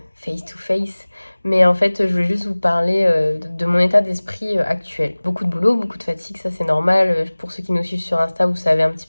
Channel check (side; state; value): both; inverted; correlation -1.00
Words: face to face, mais en fait je voulais juste vous parler de mon état d'esprit actuel. Beaucoup de boulot, beaucoup de fatigue, ça c'est normal. Pour ceux qui nous suivent sur Insta, vous savez un petit